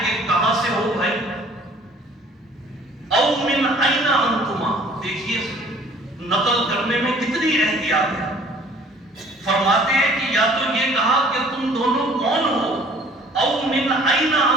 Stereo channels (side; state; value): both; normal; correlation 0.53